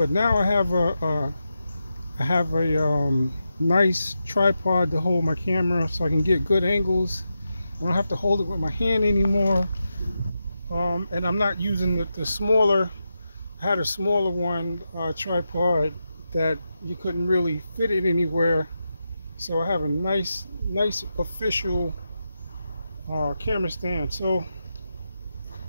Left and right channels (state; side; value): inverted; both; correlation -0.88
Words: now I have a nice tripod to hold my camera so I can get good angles. I don't have to hold it with my hand anymore. And I'm not using the smaller. I had a smaller one tripod that you couldn't really fit it anywhere. So I have a nice official camera stand. So